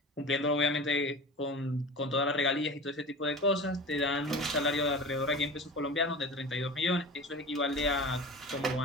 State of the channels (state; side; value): normal; both; correlation 0.34